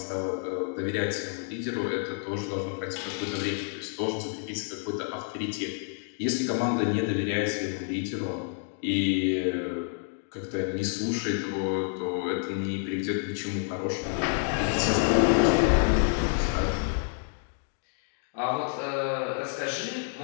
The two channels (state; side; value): silent; right; 58 dB below the other